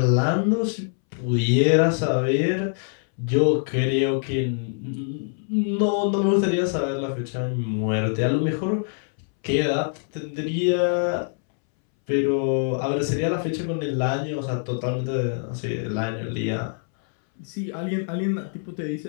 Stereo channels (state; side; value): silent; right; 62 dB below the other